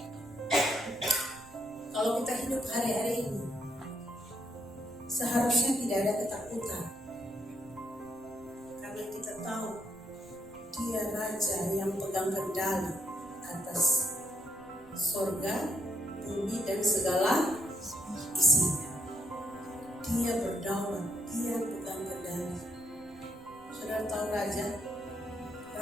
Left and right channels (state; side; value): noise; right; rumble, 26 dB below the sound